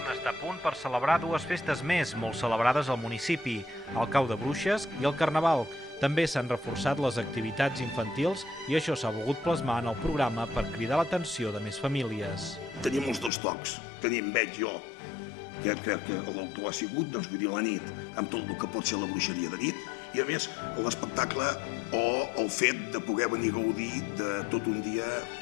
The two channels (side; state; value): right; drops out; at 13.3 s